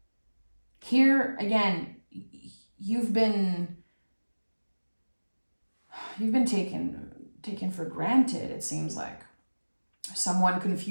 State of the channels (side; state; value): both; inverted; correlation -1.00